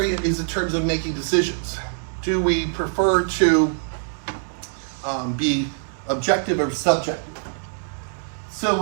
is in terms of making decisions. Do we prefer to be objective or subjective? So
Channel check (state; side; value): silent; left; digital silence